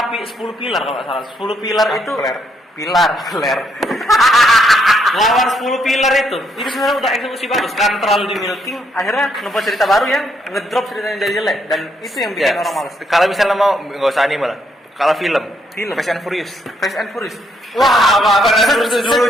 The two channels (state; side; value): normal; both; correlation 0.73